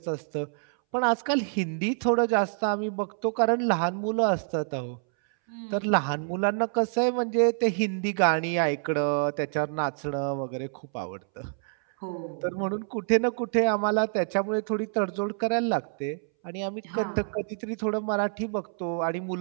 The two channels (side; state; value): left; silent; 60 dB below the other